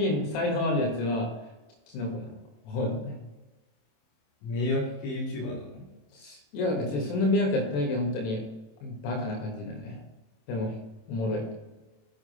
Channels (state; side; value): late; right; 27 ms